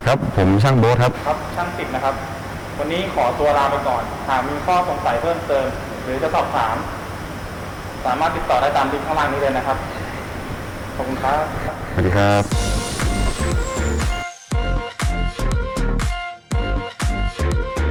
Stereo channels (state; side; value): identical; both; correlation 1.00